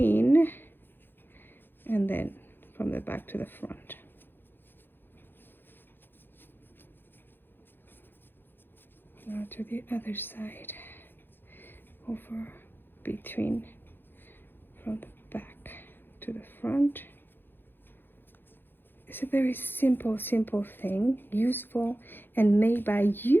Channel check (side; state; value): right; late; 0.099 ms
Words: and then from the back to the front. Now to the other side, over, between, from the back to the front. It's a very simple thing, useful, and made by